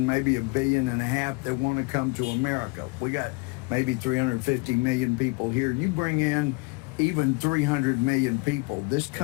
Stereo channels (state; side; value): quieter; right; 28.7 dB